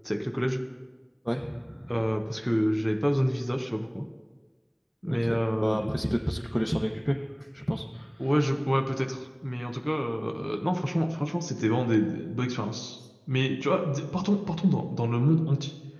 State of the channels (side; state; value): both; identical; correlation 1.00